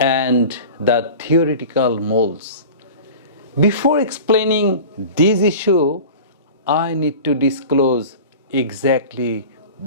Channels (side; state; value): both; inverted; correlation -0.36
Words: the theoretical moles. Before explaining this issue, I need to disclose exactly